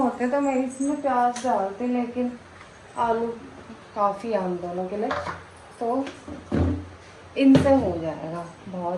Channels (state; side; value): identical; both; correlation 1.00